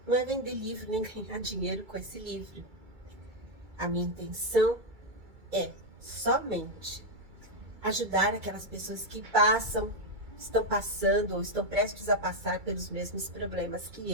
não é vender livro nem ganhar dinheiro com esse livro. A minha intenção é somente ajudar aquelas pessoas que estão passando ou estão prestes a passar pelos mesmos problemas que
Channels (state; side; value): late; left; 2.3 ms